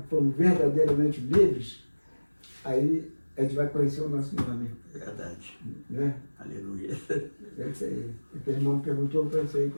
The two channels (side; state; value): both; inverted; correlation -1.00